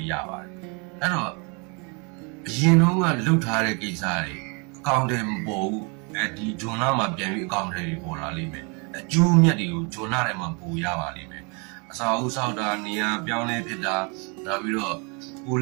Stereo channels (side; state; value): left; quieter; 33.0 dB